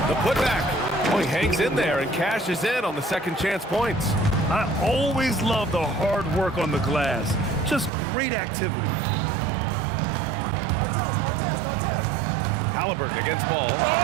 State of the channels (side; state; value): left; drops out; at 7.9 s